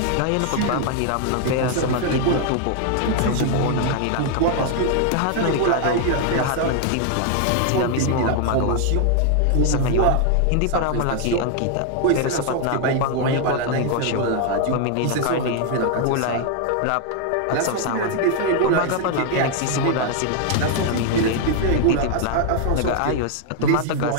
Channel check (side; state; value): both; different; correlation 0.00